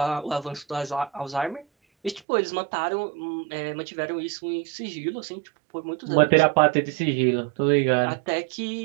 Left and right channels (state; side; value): drops out; left; at 2.2 s